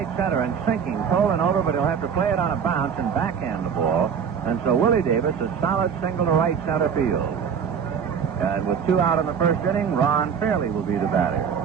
center and sinking, Tolan over, but he'll have to play it on a bounce and backhand the ball. And so Willie Davis, a solid single to right center field. And with 2 out in the first inning, Ron Fairley will be the batter.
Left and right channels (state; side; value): quieter; left; 7.1 dB